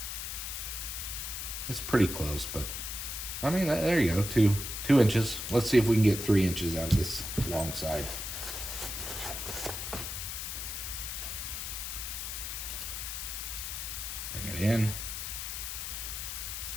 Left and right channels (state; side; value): noise; left; hiss, 5 dB below the sound